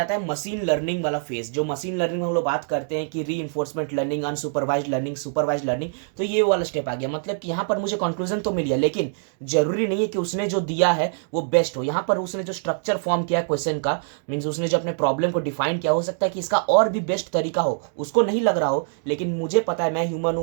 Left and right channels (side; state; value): left; silent; digital silence